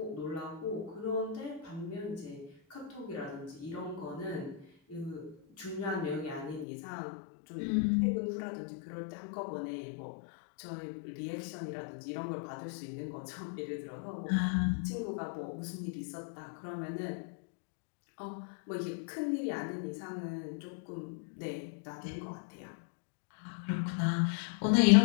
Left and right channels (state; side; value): drops out; right; at 6.7 s